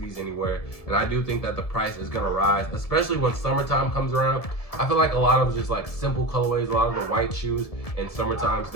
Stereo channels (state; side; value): late; right; 1.7 ms